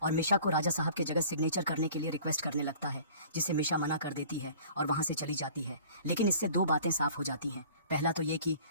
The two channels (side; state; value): both; inverted; correlation -0.48